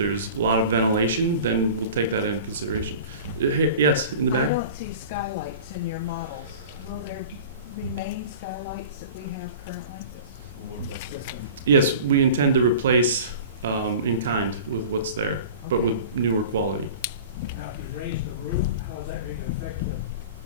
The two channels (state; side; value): inverted; both; correlation -0.39